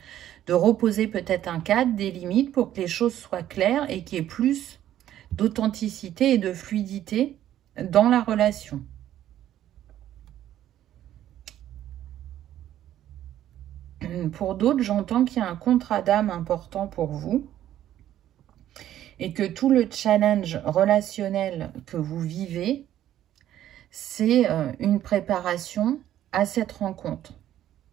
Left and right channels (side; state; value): left; quieter; 12.1 dB